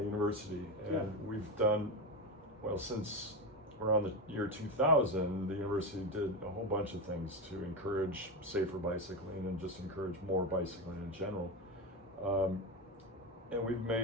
university, and we've done, since around the year 2000, the university did a whole bunch of things to encourage safer bicycling and just encourage more bicycling in general. And we've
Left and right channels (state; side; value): normal; both; correlation 0.15